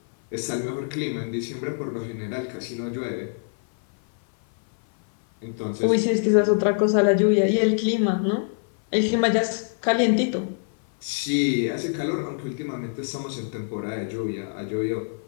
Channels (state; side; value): silent; right; 57 dB below the other